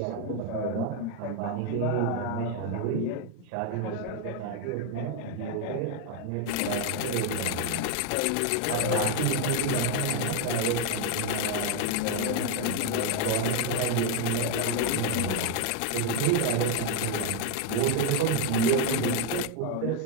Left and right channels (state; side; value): different; both; correlation 0.01